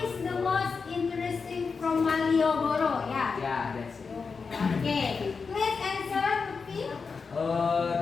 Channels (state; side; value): quieter; right; 5.0 dB